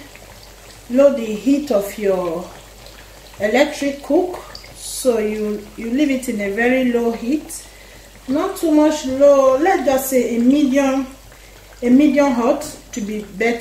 lower the heat of your electric cook. So you leave it in a very low heat, not too much low. Let's just say a medium hot to be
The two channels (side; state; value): both; identical; correlation 1.00